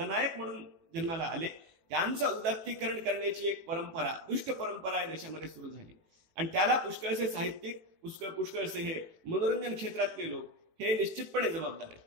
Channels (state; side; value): late; left; 18 ms